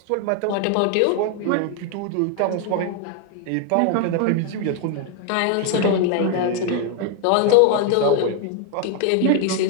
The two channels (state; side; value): different; both; correlation 0.01